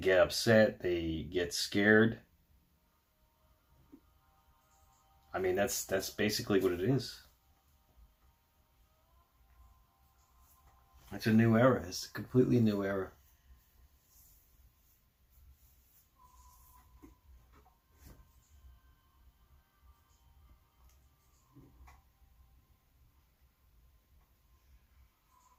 upset. They get scared. I mean, that's basically what it is. It's a new era. It's a completely new era.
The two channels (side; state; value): both; identical; correlation 1.00